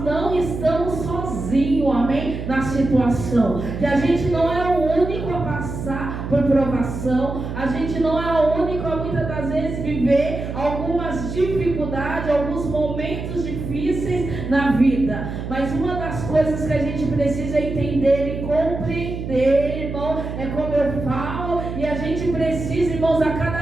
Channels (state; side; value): noise; right; hum, 6 dB below the sound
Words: não estamos sozinhos, amém? Na situação, que a gente não é o único a passar por provação, a gente não é o único a muitas das vezes viver algumas dificuldades, alguns momentos difíceis na vida. Mas uma das coisas que a gente precisa entender e compreender, irmão, é como eu falo, e a gente precisa, irmãos, a